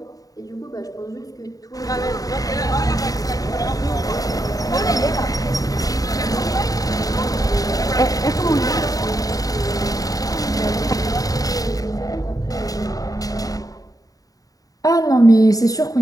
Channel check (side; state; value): right; late; 0.18 ms